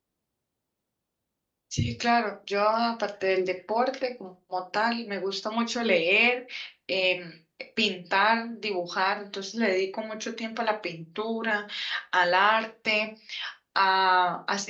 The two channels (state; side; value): identical; both; correlation 1.00